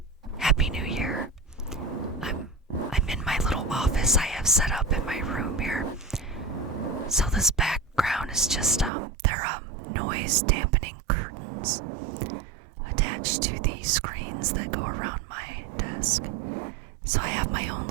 Happy New Year. I'm in my little office I have set up in my room here. So this background is just they're noise dampening curtains attached to the screens that go around my desk. So I have my own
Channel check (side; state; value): left; drops out; at 8.9 s